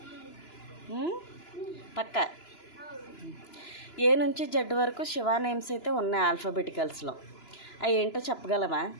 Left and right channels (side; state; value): right; late; 2.9 ms